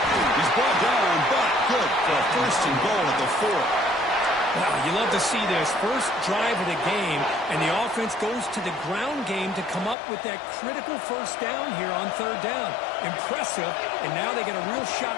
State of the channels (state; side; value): drops out; right; at 10.0 s